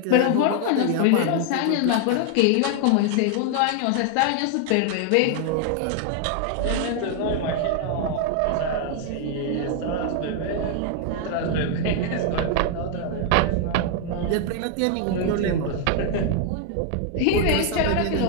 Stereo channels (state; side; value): different; both; correlation 0.00